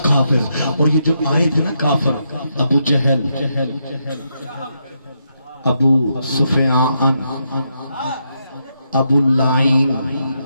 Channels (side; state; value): both; inverted; correlation -0.81